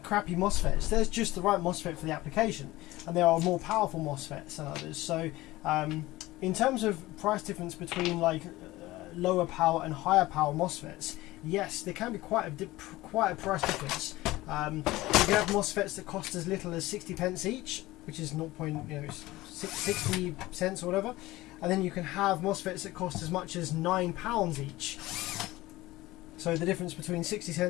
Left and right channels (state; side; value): quieter; right; 18.3 dB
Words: crappy MOSFETs. There's just the right MOSFET for the application, and there are more powerful MOSFETs than others. So in terms of price difference between like lower power and higher power MOSFETs, yes, there can be quite a price difference. You can have MOSFETs that cost as little as 60 pence each, which is 0.60 cents or whatever. And then you can have MOSFETs that cost as much as £9 each. So the difference between 60